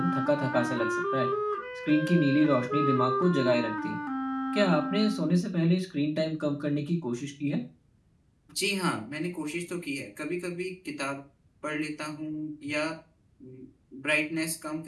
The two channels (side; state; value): both; identical; correlation 1.00